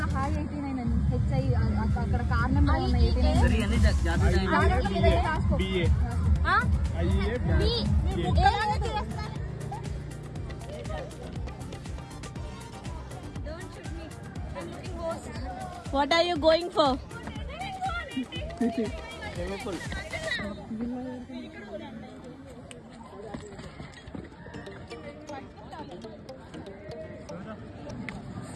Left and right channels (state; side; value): identical; both; correlation 1.00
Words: హాయ్ 89 అని హెచ్ఐ అక్కడ కారణం What are you going for?